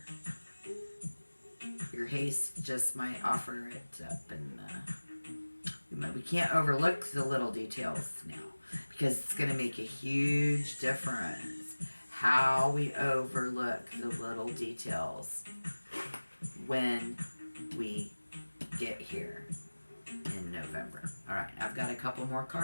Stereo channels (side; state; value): both; inverted; correlation -1.00